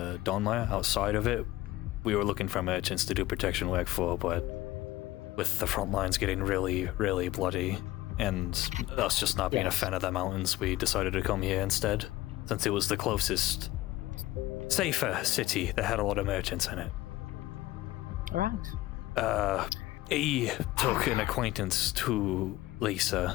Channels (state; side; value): quieter; right; 17.0 dB